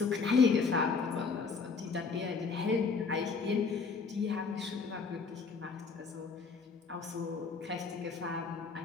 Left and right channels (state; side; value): quieter; right; 4.9 dB